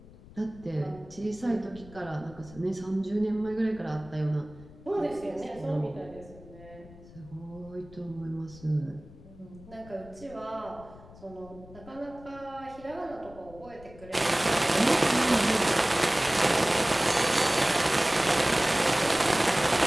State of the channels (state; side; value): noise; left; rumble, 20 dB below the sound